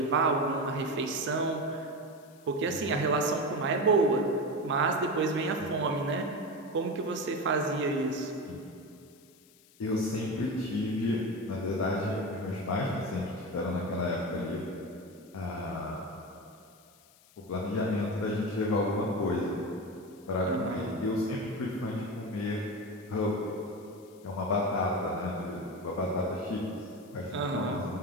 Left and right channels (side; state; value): left; noise; hiss, 27 dB below the sound